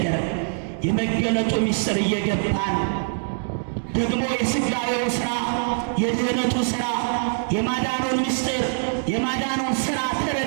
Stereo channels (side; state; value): left; silent; digital silence